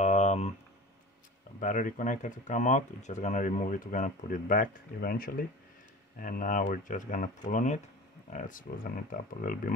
battery connector to come out. We're just gonna remove it. We're gonna put it back eventually, and now we're just gonna pull on it. Let's loosen it up a little bit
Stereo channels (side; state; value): both; normal; correlation 0.36